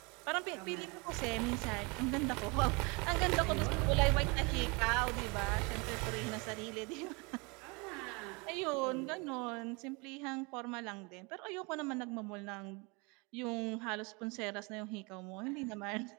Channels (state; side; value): quieter; left; 29.0 dB